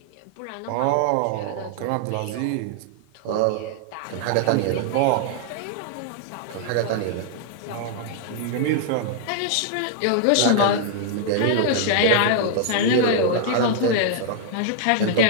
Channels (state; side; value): different; both; correlation -0.01